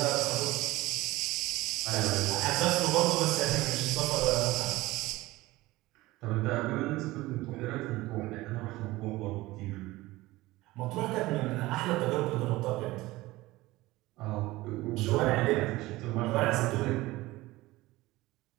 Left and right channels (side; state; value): left; quieter; 19.0 dB